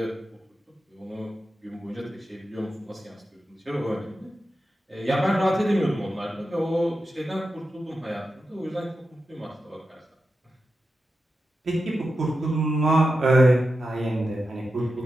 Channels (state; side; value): normal; both; correlation 0.90